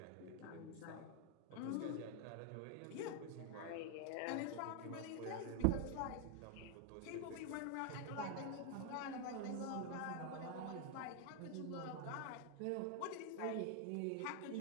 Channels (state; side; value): different; both; correlation 0.00